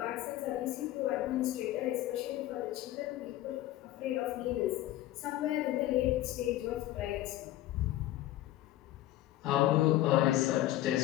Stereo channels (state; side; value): quieter; right; 14.9 dB